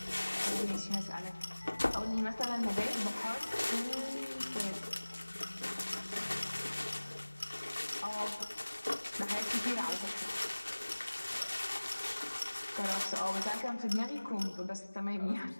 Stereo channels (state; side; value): inverted; both; correlation -1.00